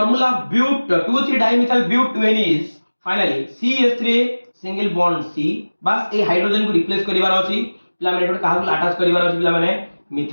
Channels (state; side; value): inverted; both; correlation -1.00